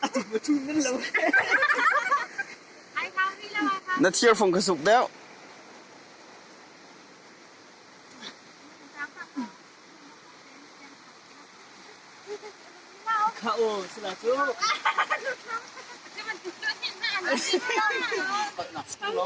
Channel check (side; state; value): both; identical; correlation 1.00